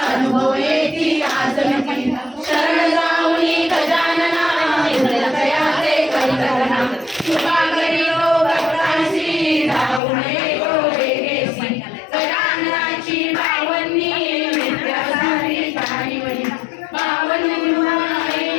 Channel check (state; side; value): drops out; right; at 10.0 s